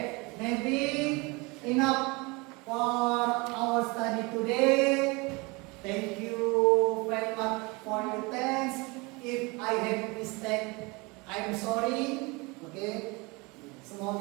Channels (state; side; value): quieter; left; 26.6 dB